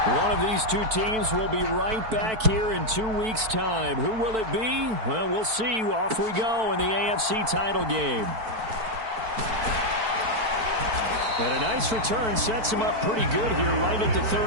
One of these two teams will be right back here in 2 weeks' time. Who will it be? Well, we'll see. Off we go in the AFC title game. And a nice return sets him up pretty good here right at the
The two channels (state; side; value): late; left; 4.5 ms